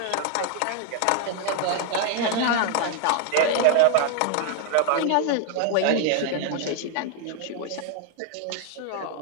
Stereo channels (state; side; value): different; both; correlation 0.00